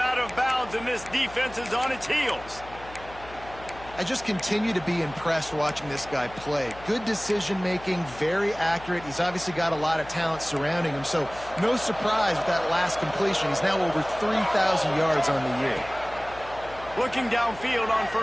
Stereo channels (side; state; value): left; noise; hum, 18 dB below the sound